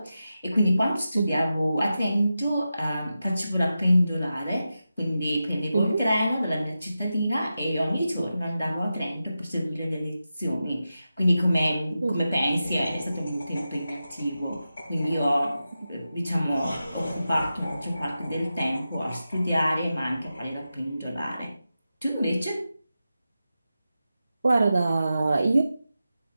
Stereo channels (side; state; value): both; inverted; correlation -0.91